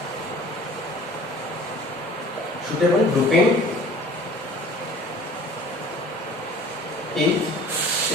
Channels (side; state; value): both; normal; correlation 0.47